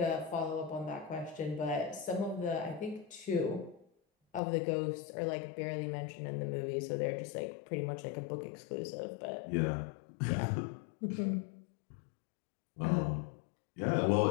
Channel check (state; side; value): drops out; right; at 4.4 s